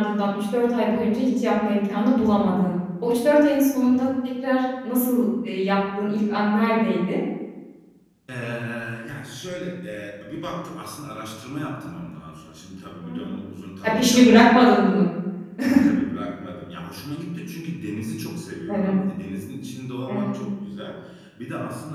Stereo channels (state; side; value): identical; both; correlation 1.00